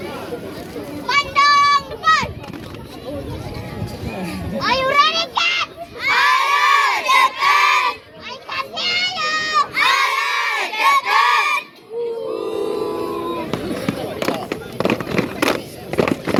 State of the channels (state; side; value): identical; both; correlation 1.00